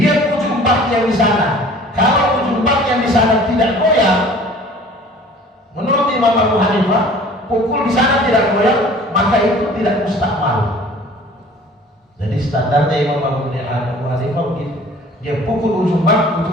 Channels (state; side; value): normal; both; correlation 0.48